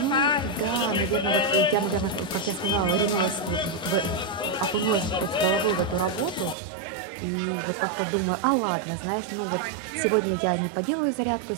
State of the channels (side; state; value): left; drops out; at 6.6 s